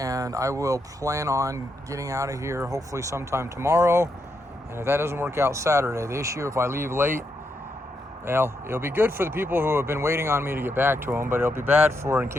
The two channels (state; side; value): normal; both; correlation 0.81